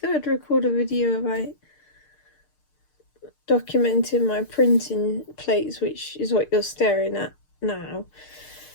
I'd record a video about documenting my printing plates, which is what you're staring at now.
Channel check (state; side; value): late; right; 6.6 ms